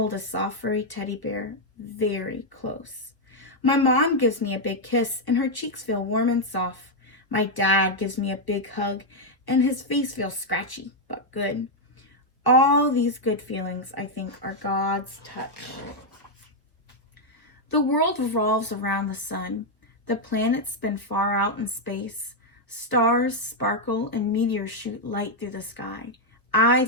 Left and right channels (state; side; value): late; right; 1.2 ms